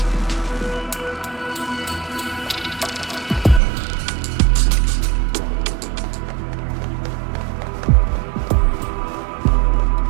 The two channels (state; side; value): drops out; left; at 3.6 s